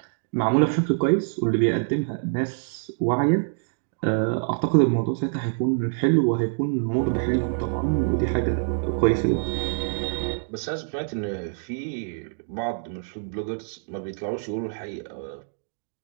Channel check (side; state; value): left; silent; digital silence